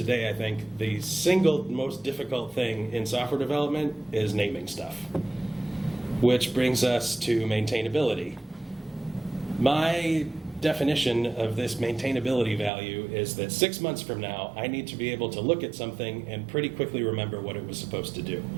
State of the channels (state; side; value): drops out; left; at 12.7 s